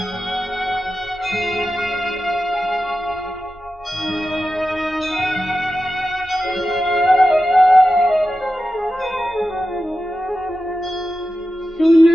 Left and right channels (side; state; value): both; normal; correlation 0.92